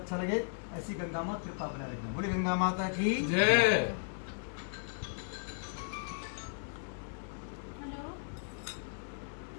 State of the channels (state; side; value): silent; right; digital silence